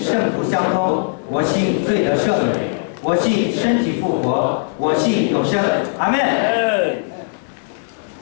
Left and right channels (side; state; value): right; silent; digital silence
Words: 徒相通，我信罪得赦免，我信身体复活，我信永生。阿门。